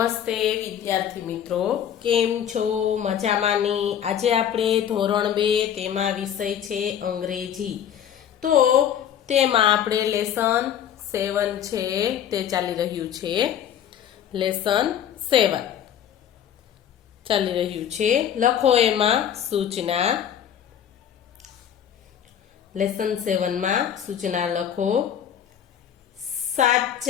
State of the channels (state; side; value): quieter; right; 9.5 dB